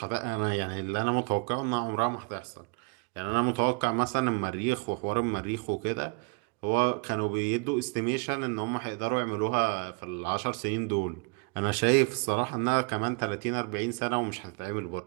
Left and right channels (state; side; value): quieter; left; 32.0 dB